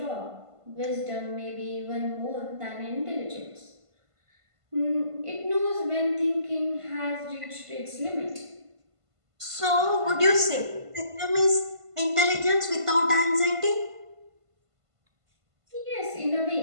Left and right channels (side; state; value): left; late; 1.5 ms